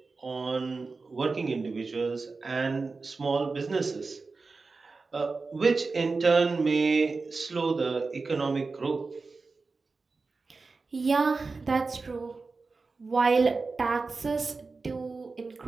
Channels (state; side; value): quieter; left; 4.1 dB